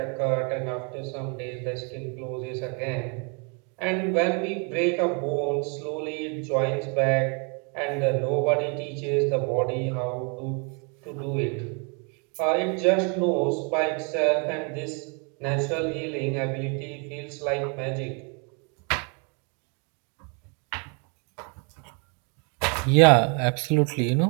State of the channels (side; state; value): left; quieter; 36.2 dB